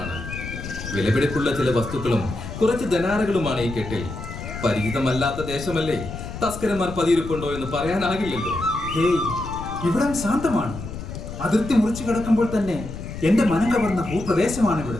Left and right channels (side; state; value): left; noise; rumble, 9 dB below the sound